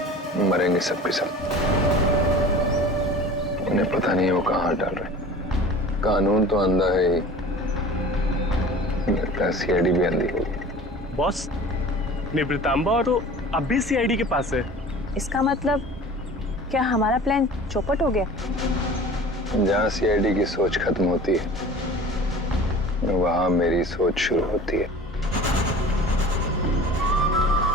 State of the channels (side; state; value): both; normal; correlation 0.41